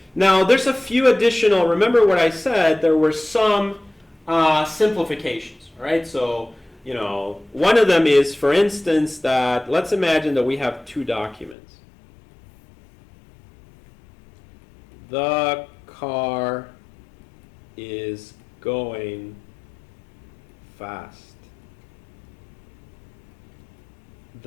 Now, there's a few additional, remember what I said, there were some simplifications, all right? So, one of them is, for instance, that let's imagine that we have two documents. The car is going fast.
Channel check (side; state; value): right; drops out; at 11.6 s